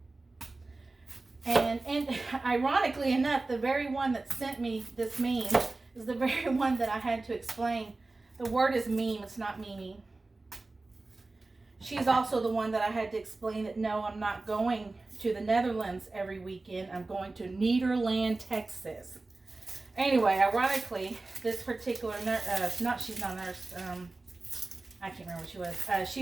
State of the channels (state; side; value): quieter; left; 3.3 dB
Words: And ironically enough, the very one that sent me this meme is the very one that I had to explain. The word is meme, it's not meme. She's also the one that I had to explain that no, I'm not going to the Netherlands every weekend. I'm going to Nederland, Texas. Anyway, ironically, this particular nurse, she's not a nurse, I can't remember what she was.